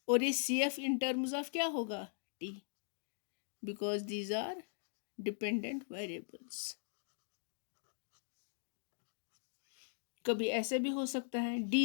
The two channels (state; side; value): silent; right; digital silence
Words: और ये CF इन टर्म्स ऑफ क्या होगा, t, because these are dependent variables. कभी ऐसे भी हो सकता है